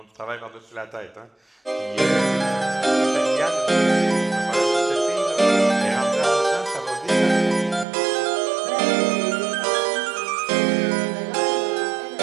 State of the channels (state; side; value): drops out; left; at 7.9 s